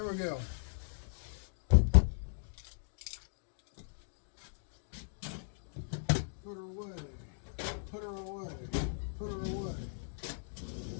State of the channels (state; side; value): silent; right; digital silence